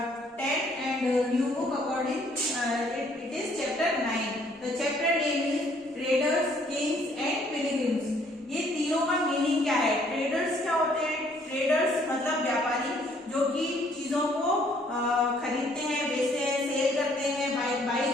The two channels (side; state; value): both; normal; correlation 0.63